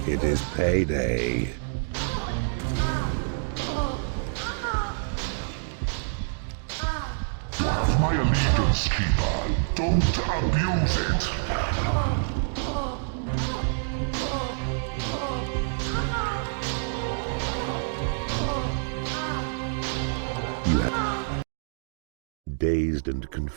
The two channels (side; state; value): left; silent; digital silence